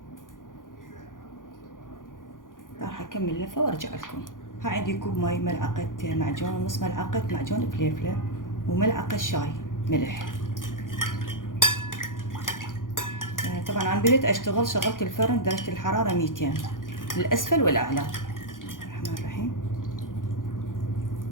راح اكمل لفة وارجع لكم. ها عندي كوب ماي، ملعقة معجون، نص ملعقة معجون فليفلة، وملعقة شاي ملح. طبعا عن بديت اشتغل شغلت الفرن درجة الحرارة 200 الاسفل والاعلى. الرحمن الرحيم.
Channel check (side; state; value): right; late; 0.89 ms